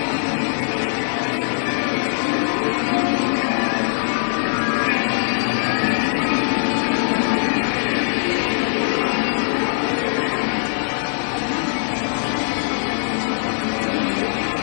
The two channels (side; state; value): right; silent; digital silence